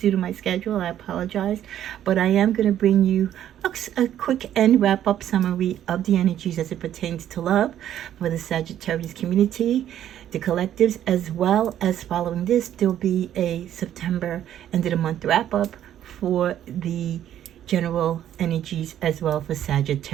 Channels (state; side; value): quieter; left; 11.1 dB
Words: due to my schedule. I apologize, but I am going to bring you a quick end wrap up summary of the energies as it pertains to love for the Sagittarius community, the collectives, as well as following this, there'll be a September end of the month wrap up for the general energies as well for